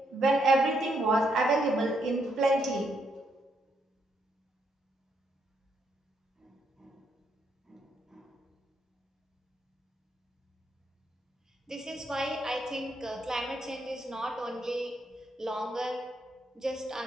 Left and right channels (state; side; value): normal; both; correlation 0.76